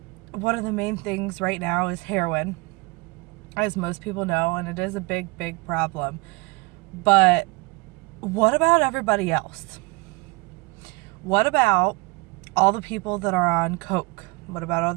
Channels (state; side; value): quieter; left; 25.6 dB